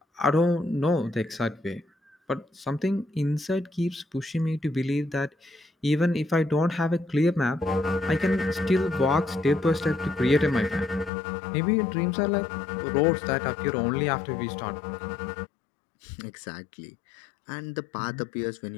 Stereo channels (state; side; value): drops out; right; at 11.1 s